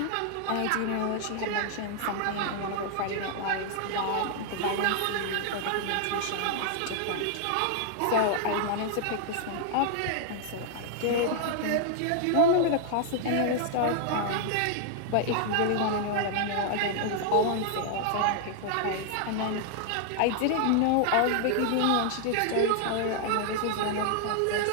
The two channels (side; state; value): both; different; correlation 0.00